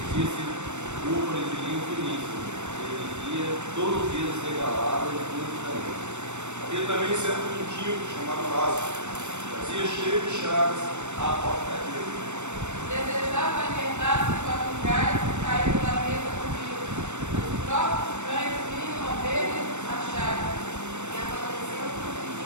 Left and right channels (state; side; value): late; left; 0.83 ms